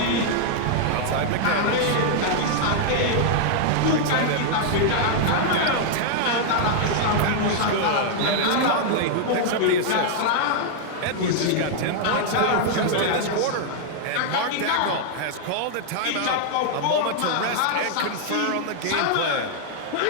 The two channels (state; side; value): different; both; correlation 0.00